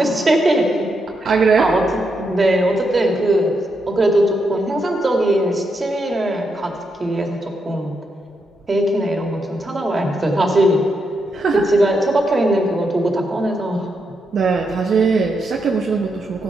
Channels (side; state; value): both; normal; correlation 0.82